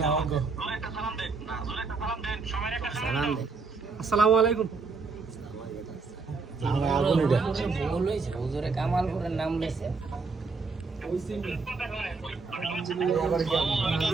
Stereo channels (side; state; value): left; quieter; 4.4 dB